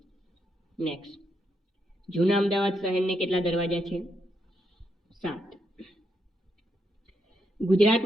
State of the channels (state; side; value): normal; both; correlation 0.80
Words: નેક્સ્ટ, જૂના અમદાવાદ શહેરને કેટલા દરવાજા છે? 7.